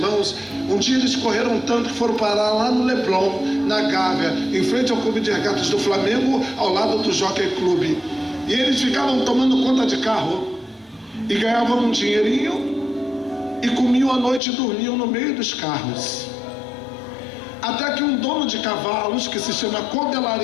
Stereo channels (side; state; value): right; drops out; at 14.4 s